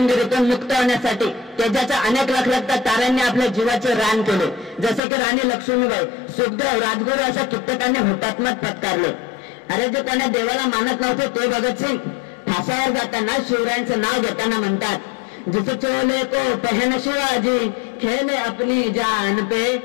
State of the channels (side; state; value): right; drops out; at 5.0 s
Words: मुक्त होण्यासाठी तेजाच्या अनेक लखलखत्या ताऱ्यांनी आपल्या जीवाचे रान केले. जसे की राणी लक्ष्मीबाई, सुखदेव, राजगुरू अशा कित्येकांनी हुतात्म्यात पत्कारले. अरे जे कोणा देवाला मानत नव्हते ते भगतसिंग फासावर जाताना शिवरायांचं नाव घेताना म्हणतात, जिस चोले को पहन शिवाजी खेले अपनी जान पे,